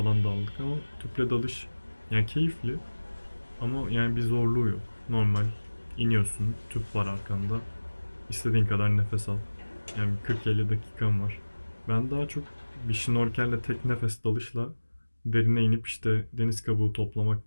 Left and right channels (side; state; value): both; inverted; correlation -1.00